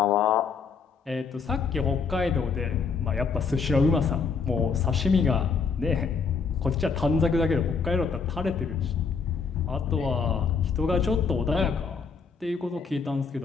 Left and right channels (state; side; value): quieter; right; 5.4 dB